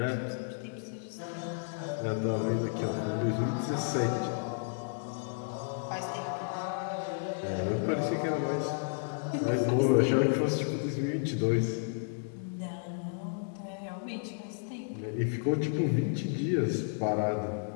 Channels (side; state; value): right; silent; digital silence